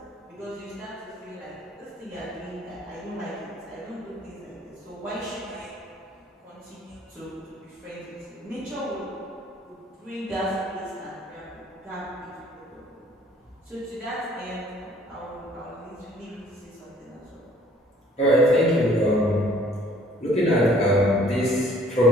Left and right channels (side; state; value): both; normal; correlation 0.57